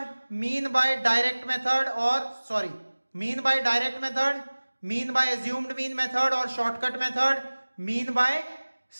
mean by direct method और sorry mean by direct method, mean by assumed mean method और shortcut method, mean by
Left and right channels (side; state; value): both; inverted; correlation -1.00